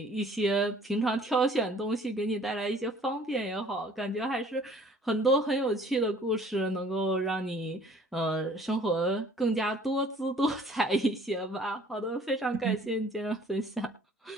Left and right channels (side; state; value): both; normal; correlation 0.54